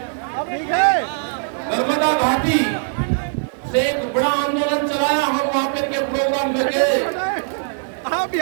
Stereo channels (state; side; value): silent; left; digital silence